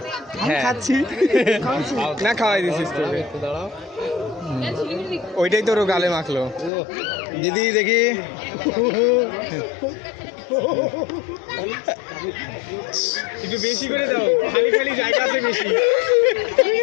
খাচ্ছি না, খাওয়াই দিছিস তো। ওইটাই তোর গালে মাখলো। দিদি দেখি একটু বেশি করে দাও, খালি জায়গা আছে বেশি।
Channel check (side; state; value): right; drops out; at 6.7 s